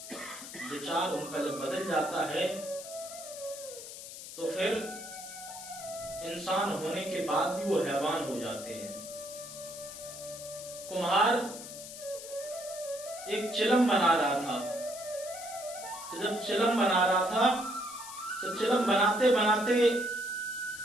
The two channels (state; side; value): noise; left; hiss, 12 dB below the sound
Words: विचार उनका जब बदल जाता है तो फिर इंसान होने के बाद भी वो हैवान हो जाते हैं। कुम्हार एक चिलम बना रहा था, तो जब चिलम बना रहा था तो चिलम बनाते बनाते